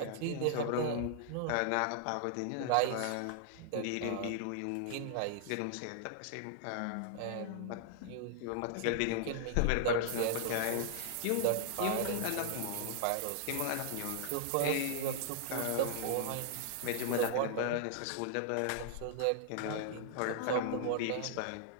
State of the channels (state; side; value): different; both; correlation -0.01